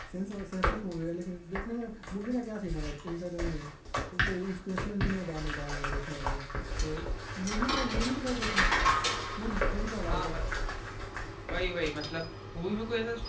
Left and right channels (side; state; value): both; identical; correlation 1.00